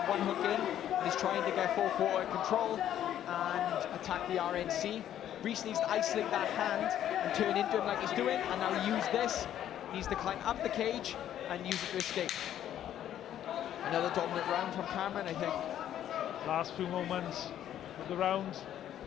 one hook in, and he's trying to get 4-quarter control and attack the RNC. Rhys needs to isolate that hand and turn into him like he's doing, and now use this. He needs to climb up the cage and use it to escape. Another dominant round from Cameron, I think. Last few moments of the round.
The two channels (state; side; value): quieter; right; 11.1 dB